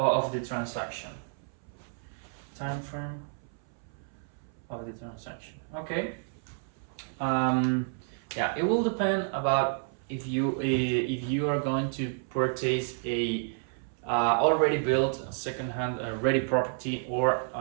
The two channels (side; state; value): left; silent; 58 dB below the other